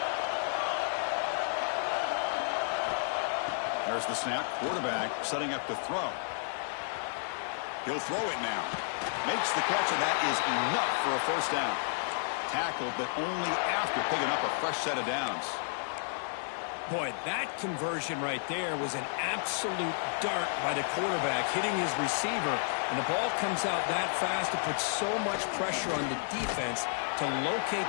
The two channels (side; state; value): right; silent; 57 dB below the other